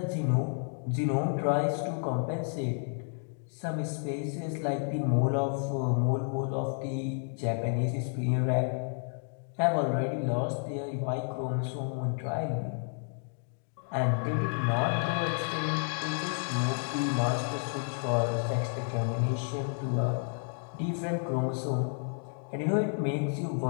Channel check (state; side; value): silent; right; 56 dB below the other